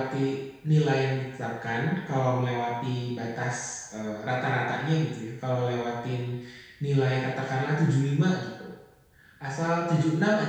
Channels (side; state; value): both; identical; correlation 1.00